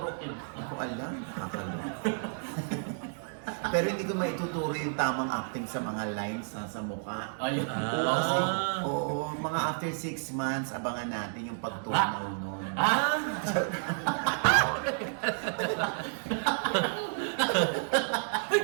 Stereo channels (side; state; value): left; silent; digital silence